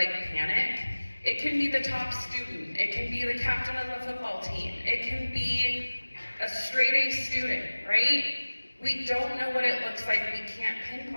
panic. It can be the top student. It can be the captain of the football team. It can be a straight A student, right? We don't know what it looks like. We can't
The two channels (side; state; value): both; inverted; correlation -1.00